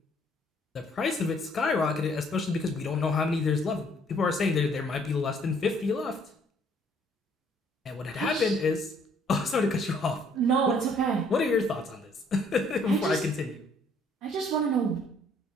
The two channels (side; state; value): both; normal; correlation 0.63